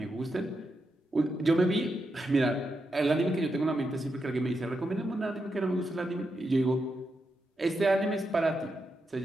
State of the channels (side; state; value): both; normal; correlation 0.85